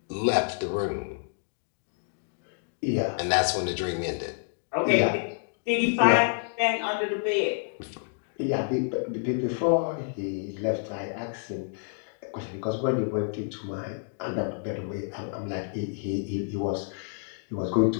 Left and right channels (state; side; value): silent; right; digital silence